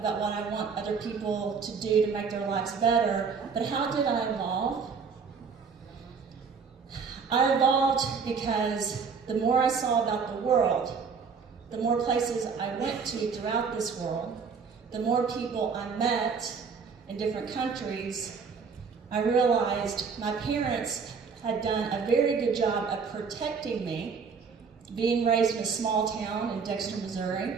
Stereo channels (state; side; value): quieter; left; 5.6 dB